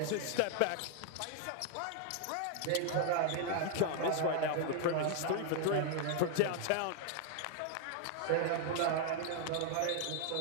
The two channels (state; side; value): different; both; correlation 0.00